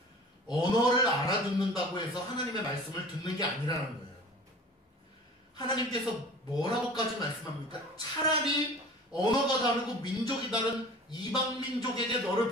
언어를 알아듣는다고 해서 하나님의 말씀을 듣는 게 아니라는 거예요. 하나님께서 뭐라고까지 말씀합니까? 차라리 언어가 다르고 민족이 다른 이방 민족에게 너를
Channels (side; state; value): both; normal; correlation 0.42